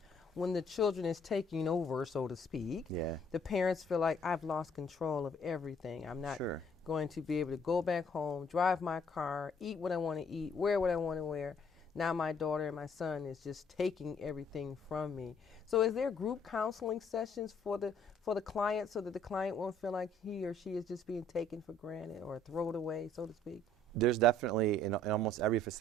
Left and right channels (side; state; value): both; normal; correlation 0.61